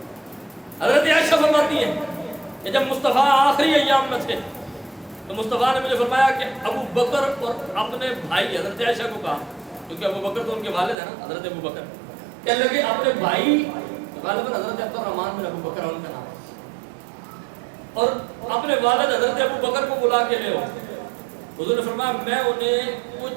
حضرت عائشہ فرماتی ہیں کہ جب مصطفیٰ آخری ایام میں تھے تو مصطفیٰ نے مجھے فرمایا کہ ابو بکر اور اپنے بھائی, حضرت عائشہ کو کہا کیونکہ ابو بکر تو ان کے والد ہیں نا, حضرت ابو بکر, کہنے لگے اپنے بھائی غالباً حضرت عبد الرحمن بن ابو بکر ان کا نام ہے, اور اپنے والد حضرت ابو بکر کو بلا کے لے آؤ. حضور نے فرمایا میں انہیں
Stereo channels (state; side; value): drops out; left; at 11.0 s